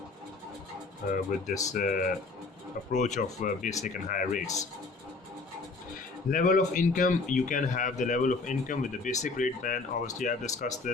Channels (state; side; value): quieter; right; 3.8 dB